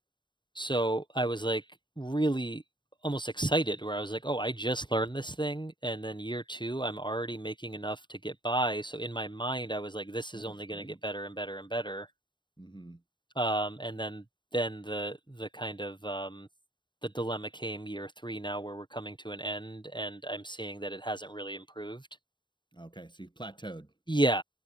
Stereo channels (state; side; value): late; right; 0.22 ms